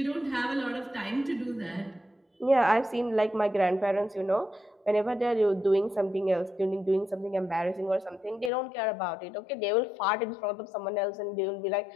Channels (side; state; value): right; drops out; at 8.5 s